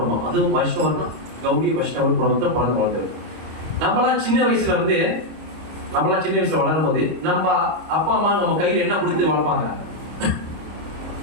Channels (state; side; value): late; left; 25 ms